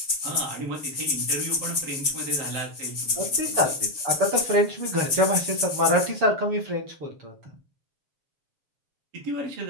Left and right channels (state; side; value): late; left; 7.0 ms